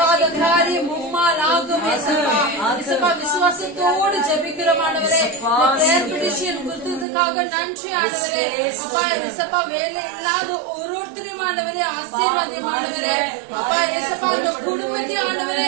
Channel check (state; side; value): drops out; left; at 7.1 s